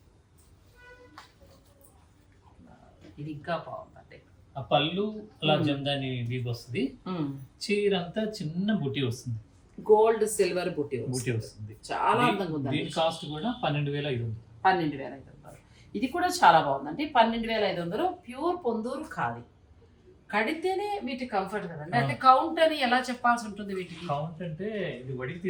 ఇది ఇంకా బాగుందండి. ఆ పళ్ళు అలా జందాని వీవ్ వస్తుంది. చీర అంతా చిన్న బుట్టి వస్తుంది, గోల్డ్ సిల్వర్ బుట్టి వస్తుంది. చాలా అందంగా ఉంది. దీని కాస్ట్ కూడా 12,500. 12,500. ఇది కూడా చాలా బాగుందండి. 12,500. ప్యూర్ పొందూరు ఖాదీ. కడితేనే వీటి కంఫర్ట్ కదండి. అంటే కౌంట్ అని ఎలా చెప్పాల్సి ఉంటుంది వీటికి? కౌంట్ అంటే ఇది వడికి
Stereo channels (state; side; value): identical; both; correlation 1.00